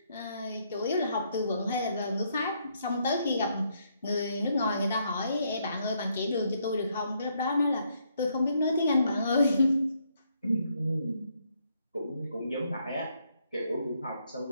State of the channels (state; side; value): inverted; both; correlation -0.73